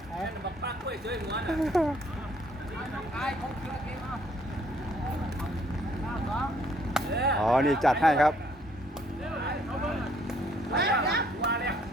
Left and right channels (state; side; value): normal; both; correlation 0.65